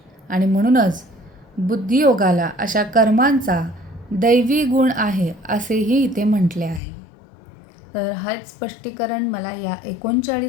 आणि म्हणूनच बुद्धियोगाला अशा कर्मांचा दैवी गुण आहे असेही इथे म्हटले आहे. तर हाच स्पष्टीकरण मला या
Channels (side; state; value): right; drops out; at 6.8 s